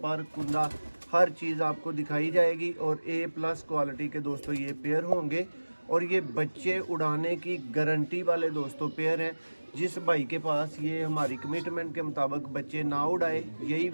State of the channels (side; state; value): both; inverted; correlation -1.00